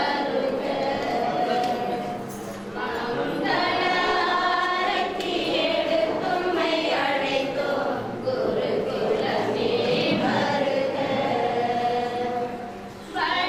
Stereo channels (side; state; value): both; identical; correlation 1.00